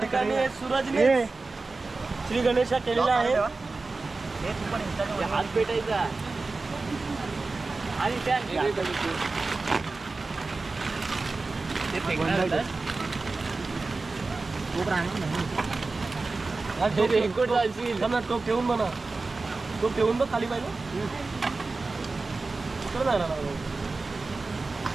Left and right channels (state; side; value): quieter; left; 3.7 dB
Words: ठिकाणी सूरजने श्री गणेशा केलेला आहे. हात पेटायचा आणि टोप ठेवून म्हणा. टोप ठेवून बघ खाली पाहिजे.